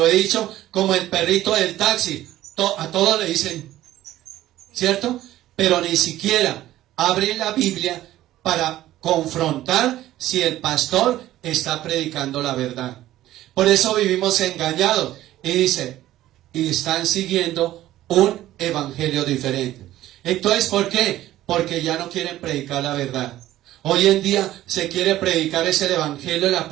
he dicho, como el perrito del taxi. A todos le dicen, ¿cierto? Pero ni siquiera abren la Biblia para confrontar si el pastor está predicando la verdad. Por eso vivimos engañados. Y dice, y están siguiendo un evangelio diferente. Entonces, ¿por qué? Porque ya no quieren predicar la verdad. Hoy en día se quiere predicar ese evangelio de la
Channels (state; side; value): quieter; left; 14.4 dB